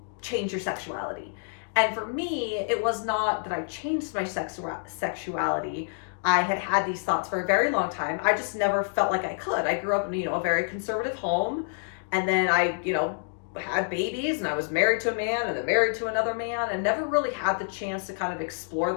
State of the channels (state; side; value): silent; right; digital silence